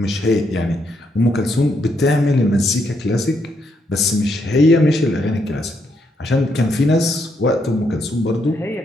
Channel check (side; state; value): both; normal; correlation 0.76